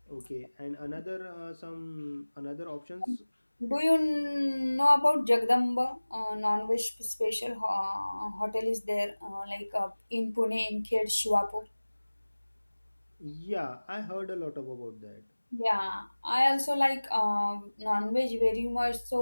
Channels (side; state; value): both; inverted; correlation -1.00